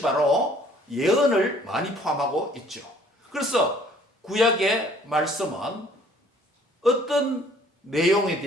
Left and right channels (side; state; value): both; normal; correlation 0.57